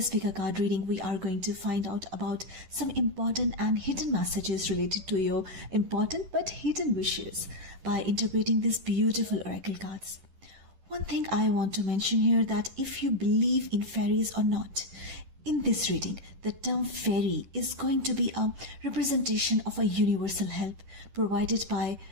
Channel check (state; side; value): late; left; 10 ms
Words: pick card reading, we are going to find out about some important and hidden messages related to your important but hidden wishes by interpreting these beautiful oracle cards. One thing I want to mention here, that if you believe in fairies or not, in this reading, the term fairy is going to be a representation of a universal help provided by